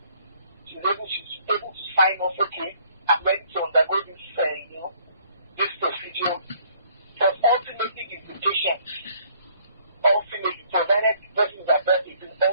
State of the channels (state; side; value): inverted; both; correlation -0.61